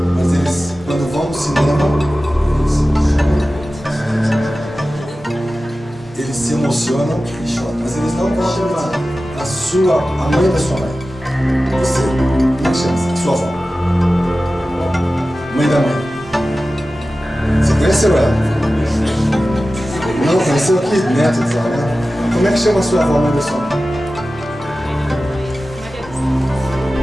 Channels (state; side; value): normal; both; correlation 0.95